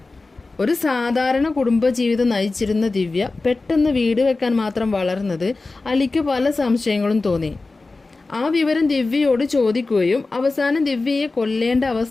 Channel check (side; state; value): right; quieter; 3.5 dB